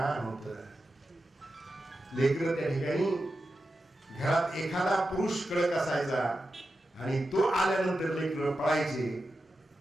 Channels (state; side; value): normal; both; correlation 0.90